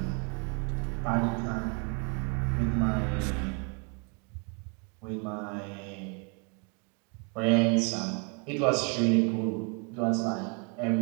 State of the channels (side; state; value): left; quieter; 36.3 dB